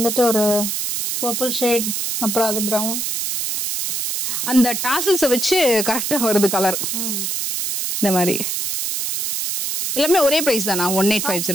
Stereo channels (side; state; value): right; noise; hiss, 2 dB below the sound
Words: ஒரு பர்பிள் ஷேட், அப்புறம் அது பிரவுன். அந்த டாசல்ஸை வச்சு கரெக்டா வருது கலர். இந்த மாதிரி எல்லாமே ஒரே பிரைஸ் தானா?